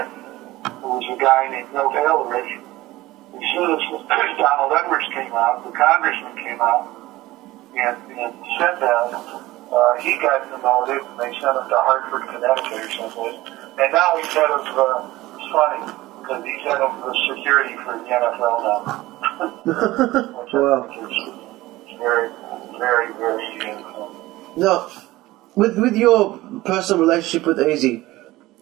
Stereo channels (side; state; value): left; quieter; 17.9 dB